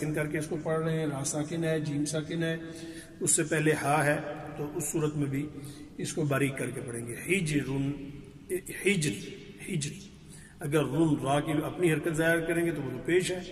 کر کے اس کو پڑھ رہے ہیں، را ساکن ہے، جیم ساکن ہے، اس سے پہلے ہا ہے تو اس صورت میں بھی اس کو باریک کر کے پڑھیں گے، ہجرن، ہجر، ہجر۔ اگر رن را کی اپنی حرکت ظاہر کریں گے تو وہ تو پیش ہے،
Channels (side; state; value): both; identical; correlation 1.00